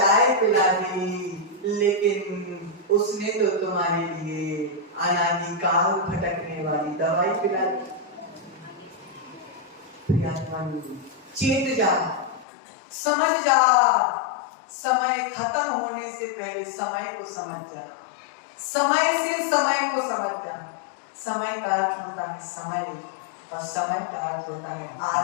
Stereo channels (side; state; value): right; drops out; at 12.5 s